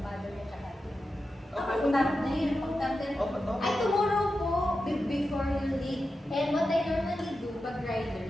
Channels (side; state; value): both; normal; correlation 0.91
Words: niya tsaka Pag-natin. Ay, tomorrow po, before you leave. And what I normally do, pag